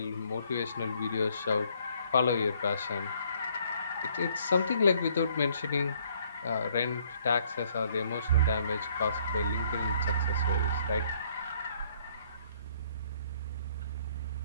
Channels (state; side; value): inverted; both; correlation -0.64